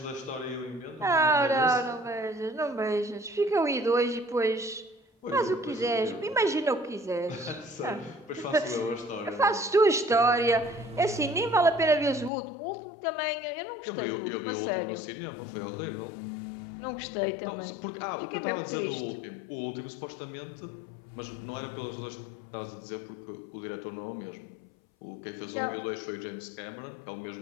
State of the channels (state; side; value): drops out; right; at 12.3 s